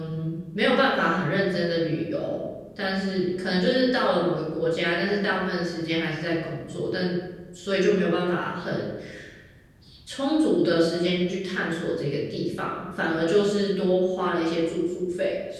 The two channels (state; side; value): identical; both; correlation 1.00